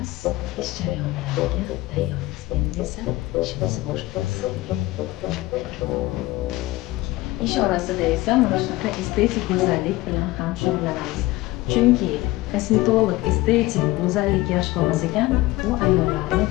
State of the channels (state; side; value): quieter; right; 18.7 dB